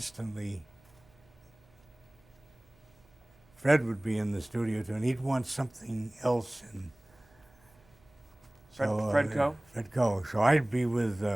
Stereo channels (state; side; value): noise; right; hum, 29 dB below the sound